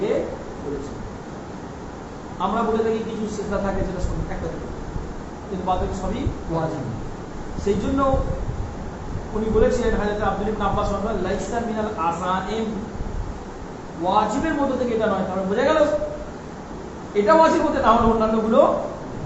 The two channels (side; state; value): both; identical; correlation 1.00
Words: বলেছেন আমরা বলে থাকি কিছু সিজদা থাকে যেটা সুন্নাত একটা কিন্তু বাকি সবই ওয়াজিব সেই জন্য উনি বলেছিলেন হযরত আব্দুল ইবনে আব্বাস রাদিয়াল্লাহু লাইসা মিনাল আযাইম ওয়াজিবের মধ্যে থেকে এটা নয় কারণ বোঝা গেল এটা ওয়াজিব হতে না হলে অন্যান্যগুলো